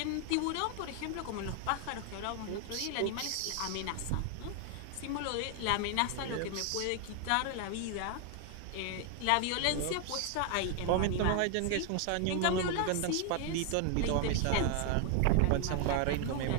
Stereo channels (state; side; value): different; both; correlation 0.00